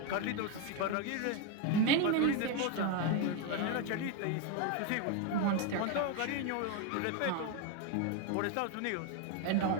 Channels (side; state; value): both; different; correlation 0.02